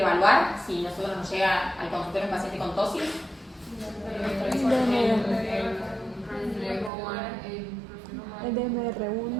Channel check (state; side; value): drops out; left; at 6.9 s